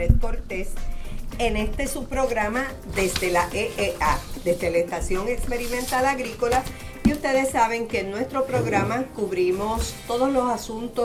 Cortés en este subprograma desde la EEA, desde la Estación Experimental Agrícola. Y ustedes saben que en nuestro programa cubrimos todos los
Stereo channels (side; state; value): both; identical; correlation 1.00